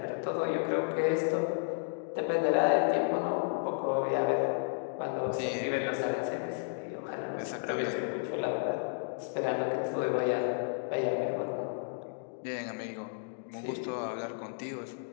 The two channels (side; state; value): right; silent; digital silence